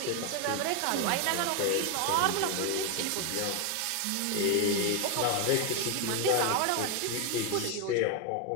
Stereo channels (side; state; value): both; different; correlation 0.01